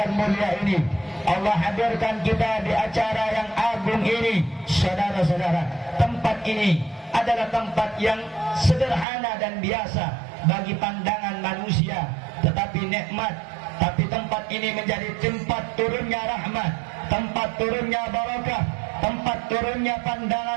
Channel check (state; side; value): drops out; left; at 9.1 s